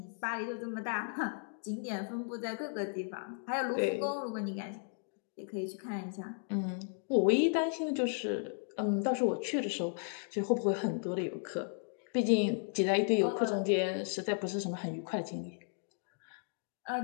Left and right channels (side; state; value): right; silent; 54 dB below the other